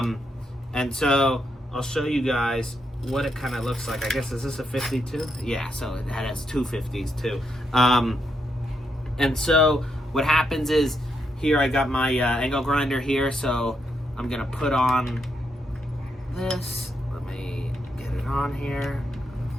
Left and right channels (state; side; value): normal; both; correlation 0.80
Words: so I'll show you guys what it kind of looks like. I guess, is this a 52? Yeah, so it has two 50s too. And so what happens is, here I got my angle grinder here, so I'm gonna put on this. Let me get it on here.